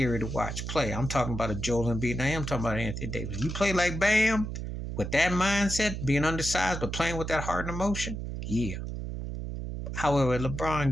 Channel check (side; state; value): right; noise; hum, 5 dB below the sound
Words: to watch play. I'm talking about a Joel Embiid. Now I'm talking about Anthony Davis. You play like Bam with that mindset, being undersized, but playing with that heart and emotion, yeah. However, LeBron